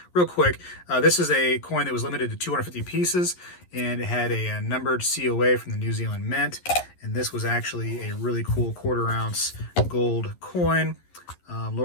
Real quick, this is a coin that was limited to 250 pieces, and it had a numbered COA from the New Zealand Mint, and this was actually a really cool quarter-ounce gold coin,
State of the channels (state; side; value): late; right; 11 ms